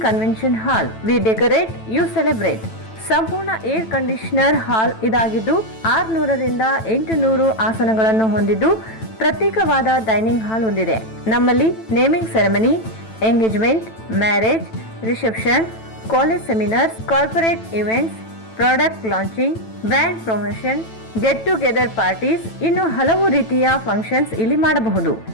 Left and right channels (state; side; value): late; right; 9.1 ms